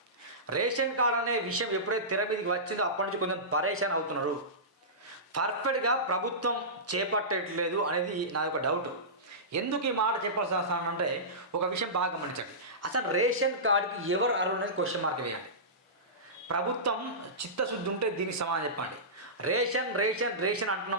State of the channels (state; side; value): normal; both; correlation -0.19